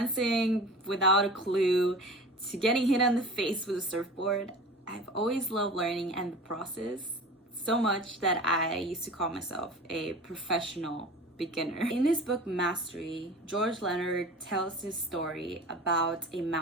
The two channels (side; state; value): both; normal; correlation 0.37